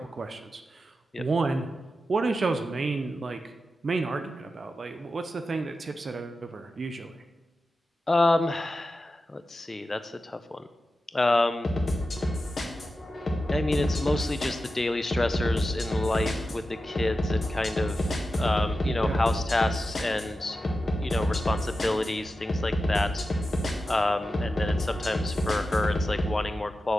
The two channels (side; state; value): both; normal; correlation 0.92